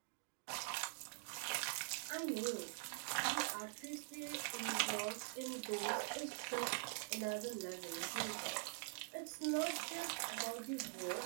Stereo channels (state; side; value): silent; left; digital silence